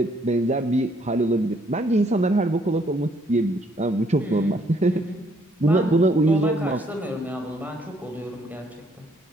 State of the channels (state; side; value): normal; both; correlation 0.67